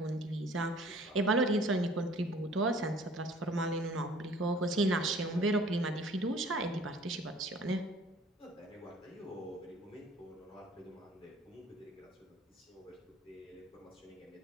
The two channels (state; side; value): normal; both; correlation 0.52